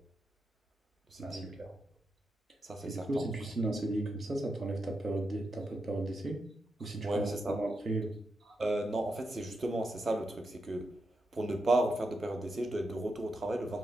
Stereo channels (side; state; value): both; normal; correlation 0.86